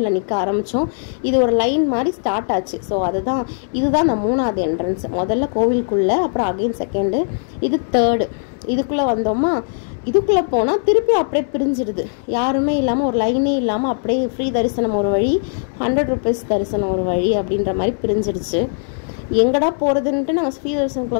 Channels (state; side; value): silent; right; 66 dB below the other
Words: நிற்க ஆரம்பித்தோம். இது ஒரு லைன் மாதிரி ஸ்டார்ட் ஆச்சு. ஸோ இதுதான் அந்த 3வது என்ட்ரன்ஸ். முதல்ல கோவிலுக்குள்ளே, அப்புறம் அகைன் 2ண்டு, இது 3rd. இதுக்குள்ளே வந்தோமா, இதுக்குள்ளே போனால் திருப்பி அப்படியே பிரிஞ்சிடுது. யாருமே இல்லாமல், ஒரு லைனே இல்லாமல் அப்படியே ஃப்ரீ தரிசனம் ஒரு வழி, 100 rupees தரிசனம் ஒரு வழி அப்படின்ற மாதிரி பிரிஞ்சிடுச்சு. எங்கடா போகிறதுன்ட்டு நாங்கள் ஃப்ரீ